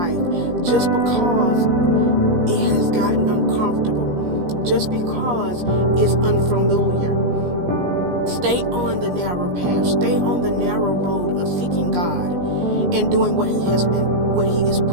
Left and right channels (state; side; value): late; left; 17 ms